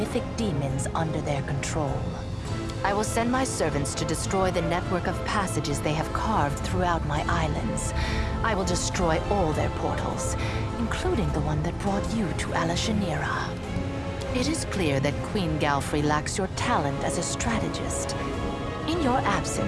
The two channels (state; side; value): identical; both; correlation 1.00